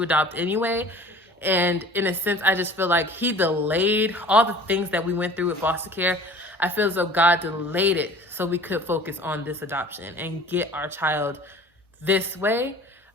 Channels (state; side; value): normal; both; correlation 0.46